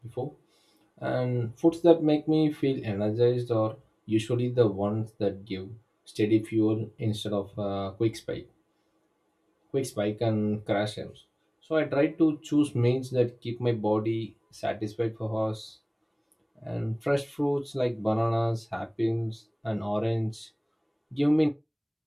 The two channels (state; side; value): identical; both; correlation 1.00